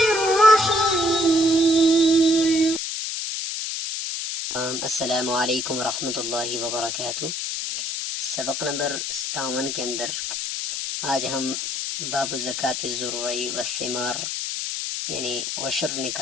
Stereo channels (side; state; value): left; noise; hiss, 3 dB below the sound